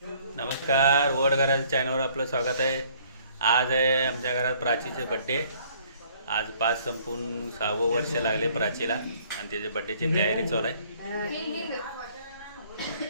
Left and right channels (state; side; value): inverted; both; correlation -0.60